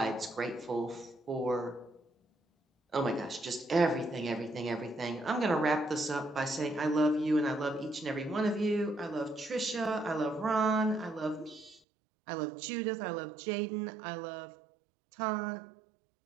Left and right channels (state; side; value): drops out; left; at 11.8 s